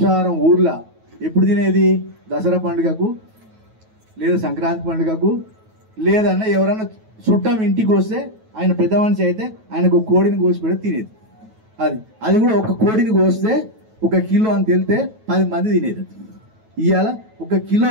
ఊర్లో ఎప్పుడు తినేది? దసరా పండుగకు లేదా సంక్రాంతి పండుగకు, లేదన్నా ఎవరన్నా చుట్టం ఇంటికి వస్తే ఆయన పెద్ద మనిషి అయితే ఆయనకు ఒక కోడిని కోసి పెడితే తినేది. అది కూడా ఒక కోడిని కోస్తే 1 కిలో అని తెలితే 10 మంది తినేది. ఇవాళ 1 కిలో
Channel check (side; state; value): left; late; 9.2 ms